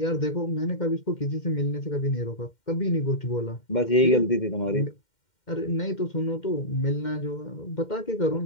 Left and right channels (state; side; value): late; right; 2.1 ms